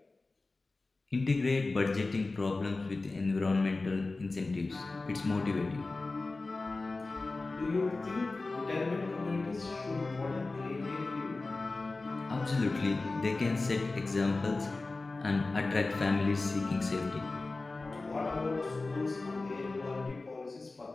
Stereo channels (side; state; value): right; quieter; 3.4 dB